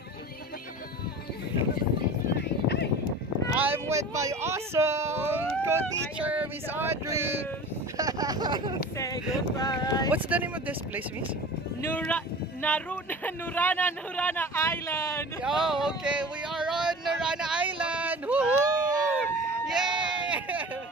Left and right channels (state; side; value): normal; both; correlation 0.38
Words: I'm with my awesome co-teacher, Miss Audrey. Say goodbye. What's the name of this place, Miss? Nurana Island. Oh, okay. We are on Narana Island. Woohoo! Yay!